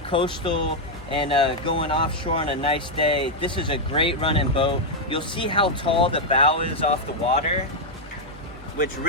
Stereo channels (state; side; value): normal; both; correlation -0.01